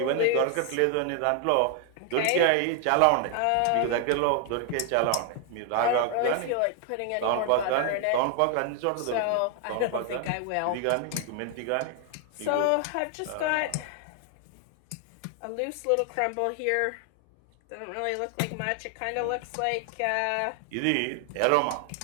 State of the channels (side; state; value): both; different; correlation 0.00